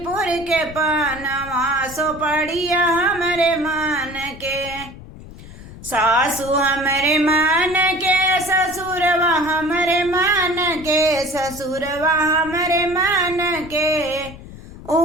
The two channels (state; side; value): noise; left; rumble, 16 dB below the sound